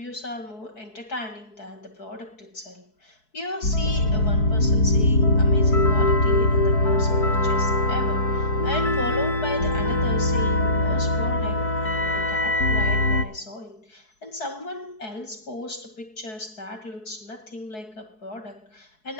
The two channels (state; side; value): late; right; 4.7 ms